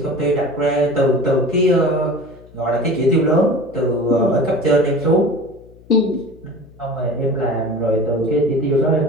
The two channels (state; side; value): noise; left; hum, 24 dB below the sound